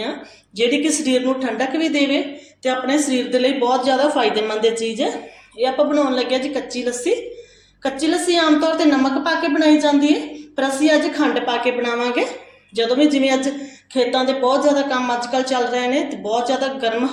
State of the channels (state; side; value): identical; both; correlation 1.00